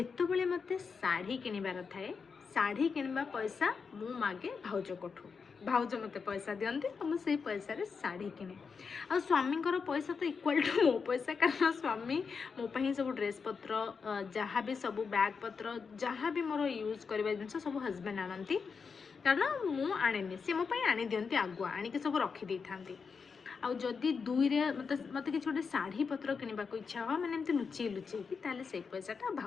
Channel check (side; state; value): right; quieter; 5.5 dB